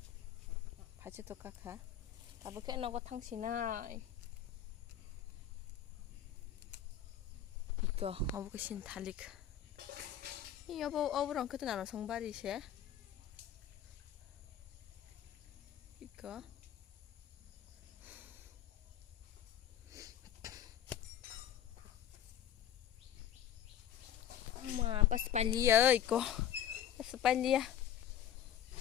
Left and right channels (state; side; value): quieter; right; 10.1 dB